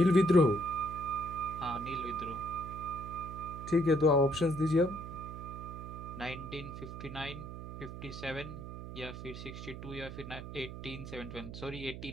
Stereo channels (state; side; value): noise; right; hum, 9 dB below the sound